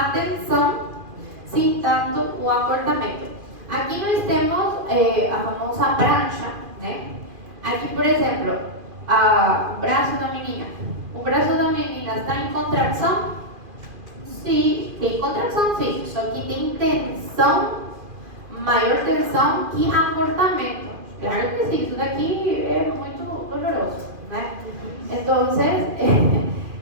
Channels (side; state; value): left; late; 2.5 ms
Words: tensão sem tanto o acortamento. Aqui nós temos a famosa prancha, né? Aqui, por exemplo, o braço da menina. O braço da menina está em contração? Sim, tem contração, sim. Só que tem tensão, maior tensão que acortamento. Claro que sim, isso daqui é muito doloroso, né? Então,